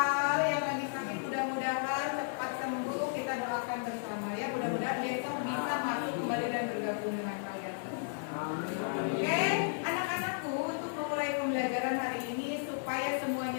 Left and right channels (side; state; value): right; silent; digital silence